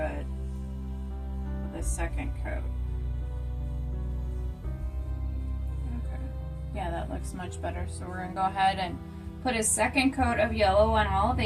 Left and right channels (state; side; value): identical; both; correlation 1.00